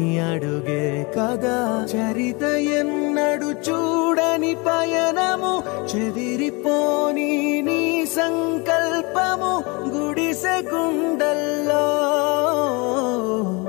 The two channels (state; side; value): quieter; right; 28.2 dB